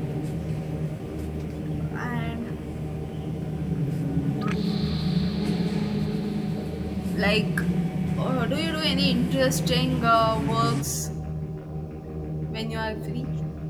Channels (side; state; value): both; identical; correlation 1.00